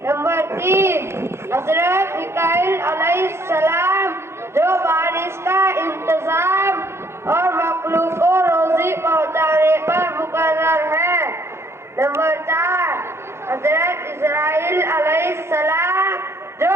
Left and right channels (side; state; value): left; late; 0.13 ms